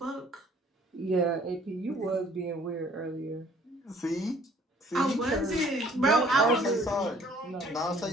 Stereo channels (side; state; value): both; normal; correlation 0.57